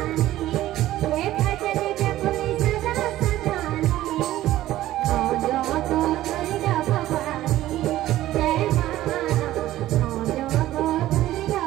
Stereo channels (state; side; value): quieter; left; 14.7 dB